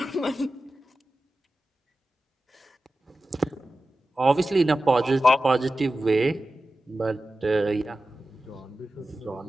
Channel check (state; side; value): normal; both; correlation 0.93